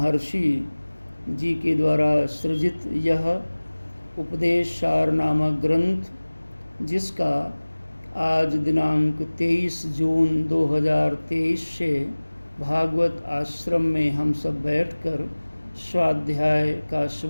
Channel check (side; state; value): both; inverted; correlation -1.00